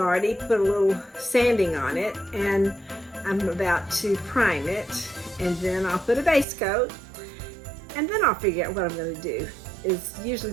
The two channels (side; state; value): left; drops out; at 6.5 s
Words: put a little sanding on it, and I'm about to prime it, and then I'll put a base coat, and then I'll figure out what I'm going to do. Is usually